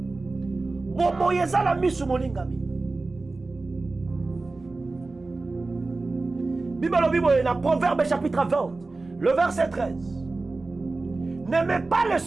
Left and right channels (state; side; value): quieter; left; 3.5 dB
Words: Bon Moïse na misu molingami. Bible alobi na Proverbe chapitre 20, le verset 13. N'aimez pas le